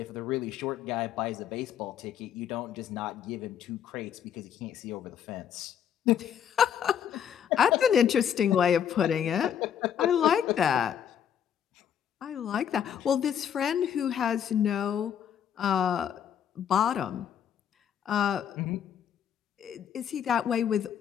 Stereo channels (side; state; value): right; quieter; 8.9 dB